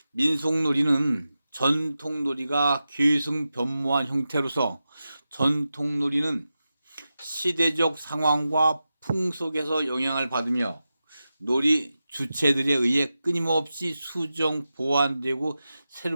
민속놀이는 전통놀이가 계승변모한 형태로서, 전통놀이는 시대적 상황과 풍속에서 영향을 받으며 놀이 주체들에 의해 끊임없이 수정, 보완되고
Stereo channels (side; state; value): both; inverted; correlation -0.92